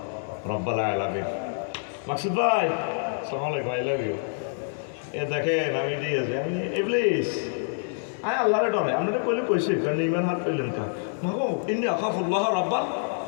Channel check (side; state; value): right; silent; digital silence